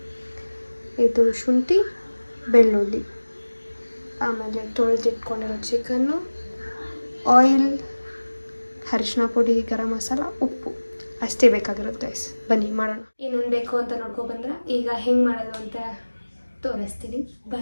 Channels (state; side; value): inverted; both; correlation -1.00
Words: ಇದು ಶುಂಠಿ, ಬೆಳ್ಳುಳ್ಳಿ, ಆಮೇಲೆ ತೊಳೆದಿಟ್ಕೊಂಡಿರೋ ಚಿಕನ್ನು, ಆಯಿಲ್, ಅರಿಶಿನ ಪುಡಿ, ಗರಂ ಮಸಾಲ, ಉಪ್ಪು ಅಷ್ಟೇ ಬೇಕಾಗಿರುತ್ತೆ. ಬನ್ನಿ ಮಾಡೋಣ. ಏನೇನು ಬೇಕು ಅಂತ ನೋಡ್ಕೊಬಂದ್ರೆ ಈಗ ಹೆಂಗೆ ಮಾಡೋದು ಅಂತ ತೋರಿಸ್ತೀನಿ.